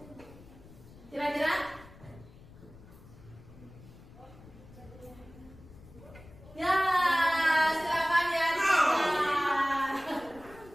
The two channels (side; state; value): left; noise; rumble, 20 dB below the sound